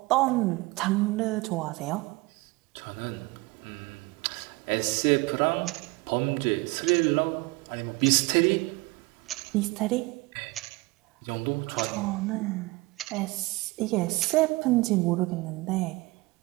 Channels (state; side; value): quieter; left; 22.8 dB